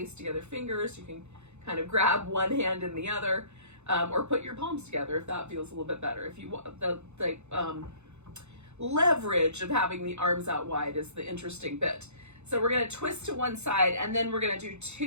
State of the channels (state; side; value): late; left; 0.81 ms